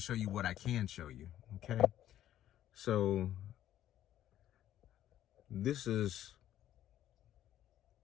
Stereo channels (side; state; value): right; quieter; 12.1 dB